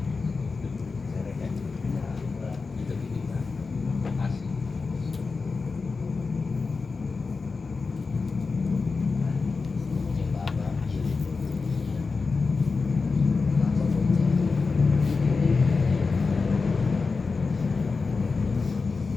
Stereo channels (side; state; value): right; quieter; 4.4 dB